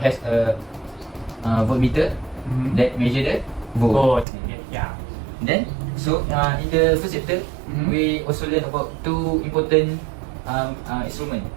a voltmeter that measure the volt. Both. Yeah. Then so in the first chapter we also learn about 2 important instruments.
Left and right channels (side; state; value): left; drops out; at 4.2 s